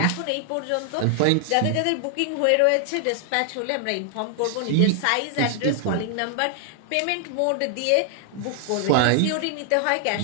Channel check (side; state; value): both; different; correlation 0.00